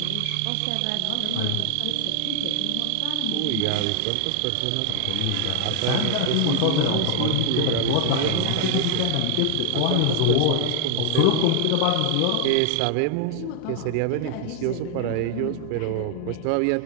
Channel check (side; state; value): both; different; correlation 0.00